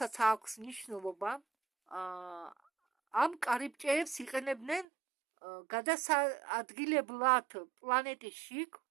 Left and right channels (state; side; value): drops out; left; at 4.9 s